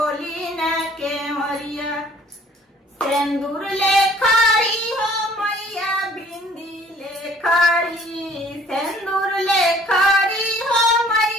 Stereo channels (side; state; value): both; normal; correlation 0.55